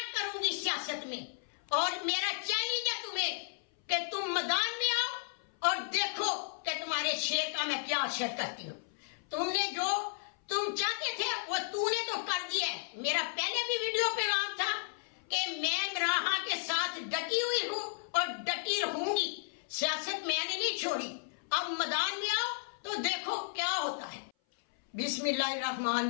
करूंगी सियासत में, और मेरा चैलेंज है तुम्हें कि तुम मैदान में आओ और देखो कि तुम्हारे शेर का मैं क्या असर करती हूँ। तुमने जो तुम चाहते थे वो तूने तो कर दिया है। मेरा पहले भी वीडियो पे नाम था कि मैं इमरान के साथ डटी हुई हूँ और डटी रहूंगी। सियासत मैंने नहीं छोड़ी। अब मैदान में आओ तो देखो क्या होता है।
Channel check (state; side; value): silent; right; 55 dB below the other